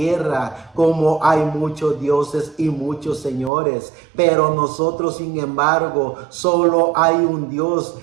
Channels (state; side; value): drops out; left; at 3.5 s